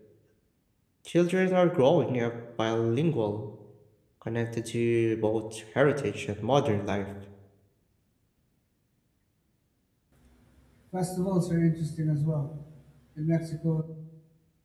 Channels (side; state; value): both; identical; correlation 1.00